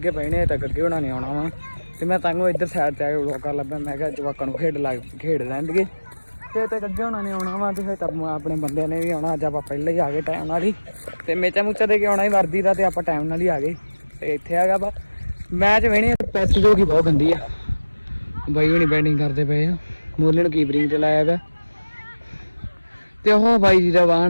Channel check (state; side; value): inverted; both; correlation -1.00